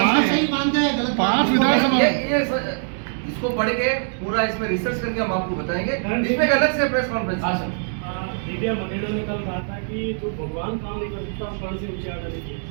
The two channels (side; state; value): left; silent; digital silence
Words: इसको पढ़ के पूरा इसमें रिसर्च करके हम आपको बताएंगे। इसमें अलग से प्रेस कॉन्फ्रेंस मीडिया मंडेला ने कल कहा था कि जो भगवान काम नहीं कर सकता कर्ण से ऊंचे आने के